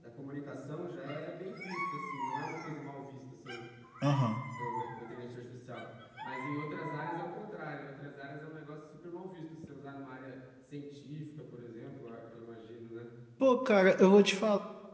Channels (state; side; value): identical; both; correlation 1.00